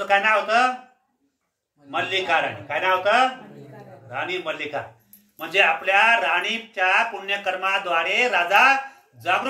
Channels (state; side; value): identical; both; correlation 1.00